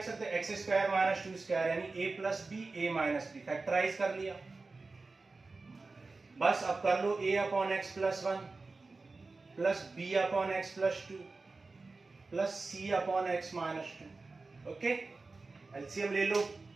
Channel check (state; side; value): quieter; left; 3.7 dB